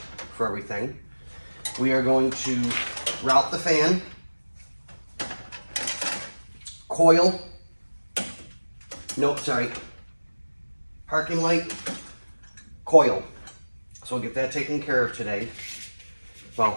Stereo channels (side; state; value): both; inverted; correlation -1.00